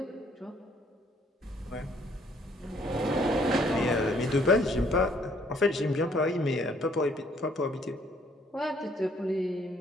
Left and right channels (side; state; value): both; normal; correlation 0.64